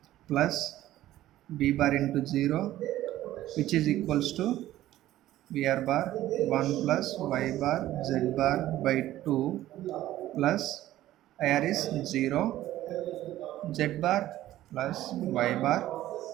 plus B bar into 0, which is equals to Vr bar 1 plus y bar z bar by 2 plus IR is 0, z bar plus y bar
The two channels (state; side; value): quieter; left; 14.3 dB